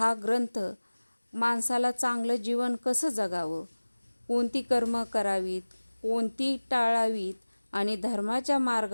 ग्रंथ माणसाला चांगलं जीवन कसं जगावं, कोणती कर्म करावीत, कोणती टाळावीत आणि धर्माच्या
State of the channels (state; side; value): inverted; both; correlation -1.00